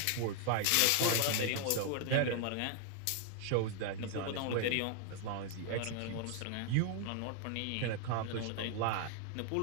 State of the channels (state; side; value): different; both; correlation 0.00